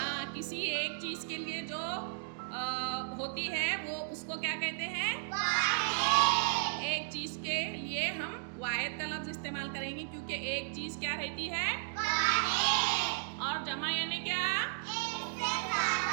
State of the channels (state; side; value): silent; left; digital silence